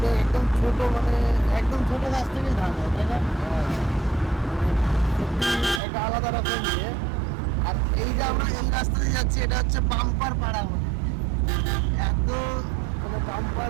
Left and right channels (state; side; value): drops out; left; at 5.8 s